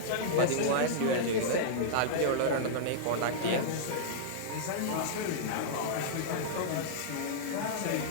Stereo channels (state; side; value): different; both; correlation -0.03